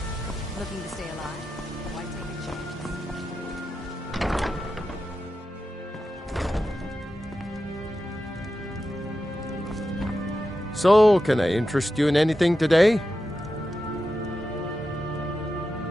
Looking to stay alive? Why take a chance? So, can I interest you in anything today?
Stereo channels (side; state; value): both; normal; correlation 0.90